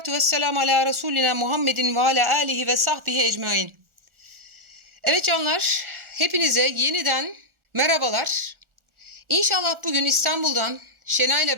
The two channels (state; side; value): late; left; 1.4 ms